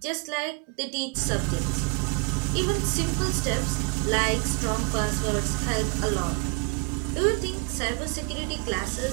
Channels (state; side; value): quieter; left; 28.1 dB